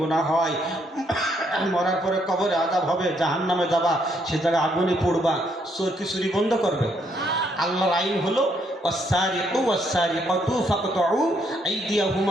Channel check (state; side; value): normal; both; correlation 0.72